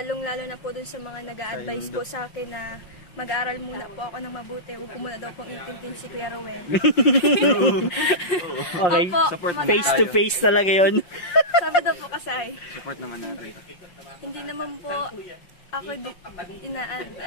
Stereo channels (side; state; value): right; late; 5.6 ms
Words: na po dun sa mga nag-a-advise po sa akin na mag-aaral muna po ako ng mabuti. Huwag ko muna daw pong intintin si Kuya Ruel. Okay, face to face talaga yun. Sabi daw po kasi, Support naman natin. hindi naman po Ako